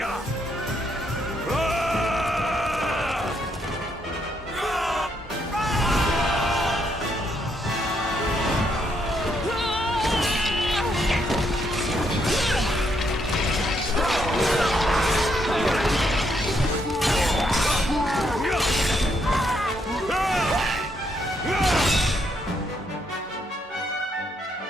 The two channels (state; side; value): normal; both; correlation 0.75